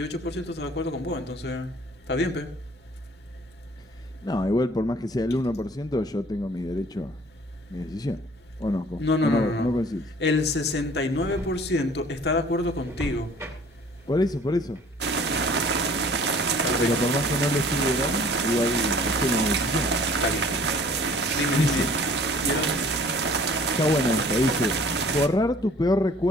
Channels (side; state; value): both; normal; correlation 0.52